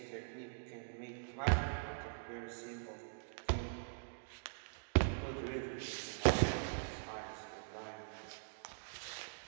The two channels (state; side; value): silent; left; digital silence